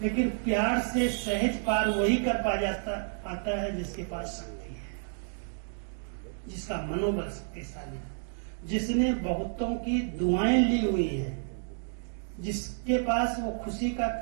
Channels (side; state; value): left; silent; digital silence